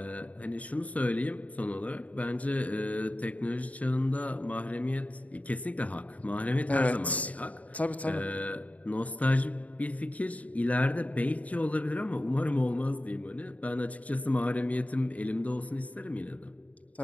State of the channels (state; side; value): late; right; 0.069 ms